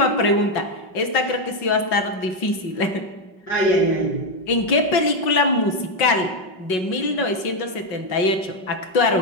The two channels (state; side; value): late; right; 5.4 ms